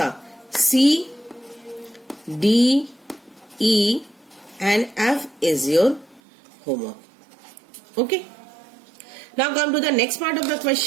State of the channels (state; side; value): drops out; left; at 6.2 s